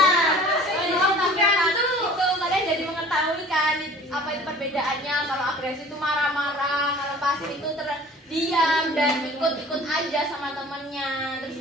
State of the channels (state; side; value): normal; both; correlation 0.46